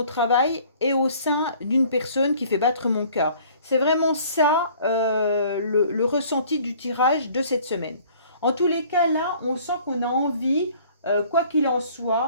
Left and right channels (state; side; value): inverted; both; correlation -0.53